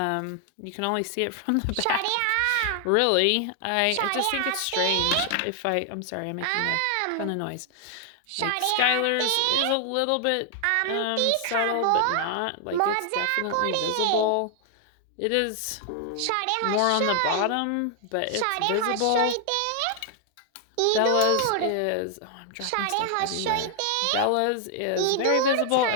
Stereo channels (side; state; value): both; different; correlation 0.00